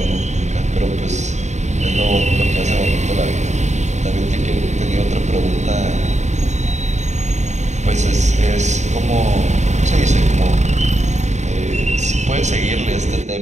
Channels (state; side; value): late; left; 0.34 ms